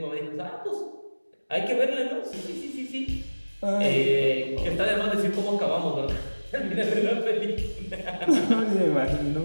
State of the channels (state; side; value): inverted; both; correlation -1.00